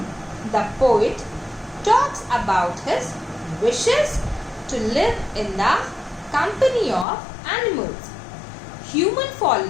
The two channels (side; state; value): right; drops out; at 7.1 s